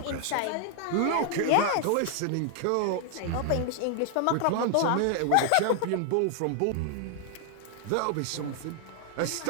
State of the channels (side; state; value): both; different; correlation 0.00